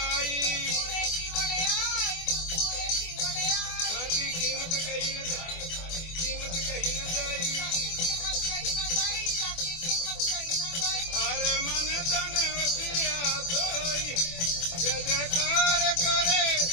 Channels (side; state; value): right; late; 24 ms